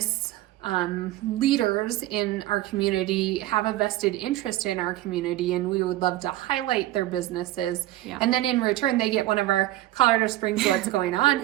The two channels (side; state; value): left; quieter; 15.7 dB